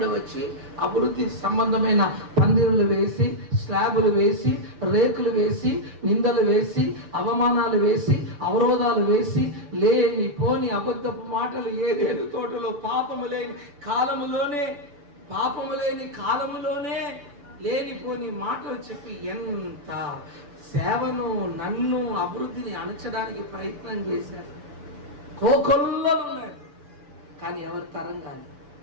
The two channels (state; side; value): late; left; 6.9 ms